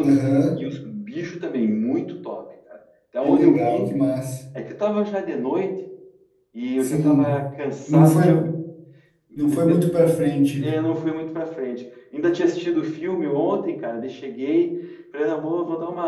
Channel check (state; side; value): identical; both; correlation 1.00